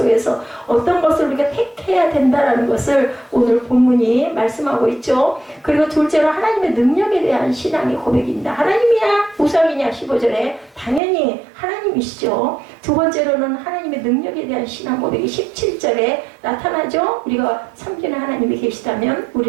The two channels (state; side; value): drops out; left; at 11.0 s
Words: 어떤 것을 우리가 택해야 된다라는 것을 오늘 본문이 말씀하고 있죠. 그리고 둘째로 하나님의 능력에 대한 신앙의 고백입니다. 하나님이야 우상이냐 15절에 당연히 하나님이시죠. 두 번째로는 하나님의 능력에 대한 신앙 고백이 17절에 나타나죠. 우리가 섬기는 하나님이 계시다면